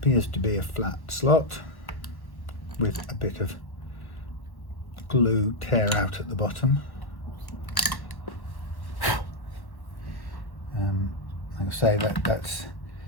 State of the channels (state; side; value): late; right; 1.1 ms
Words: to be a flat slot with a bit of glue tear out at the bottom. Like I say, that's